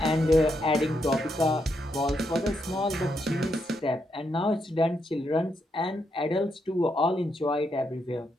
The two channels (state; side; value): normal; both; correlation 0.80